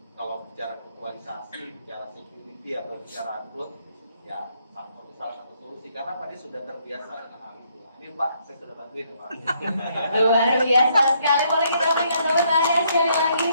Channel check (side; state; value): both; inverted; correlation -0.71